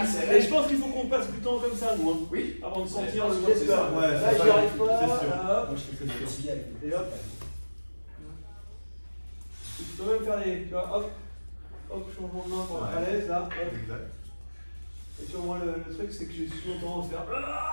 Et je pense qu'il faut qu'on passe du temps comme ça, nous. Hein. Oui. Avant de sentir Ouais, le je pense geste que c'est là. ça. Ouais, Là, c'est j'y ça. arrive pas. C'est sûr. Là, hop. Moi, je fais que ça. Et hop. Tu peux même faire des. Tu vois, hop. Hop, changement de main pour être à l'aise, là. Hop. Exact. Et tu vois, moi, le truc, c'est que j'ai souvent tendance à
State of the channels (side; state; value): both; inverted; correlation -1.00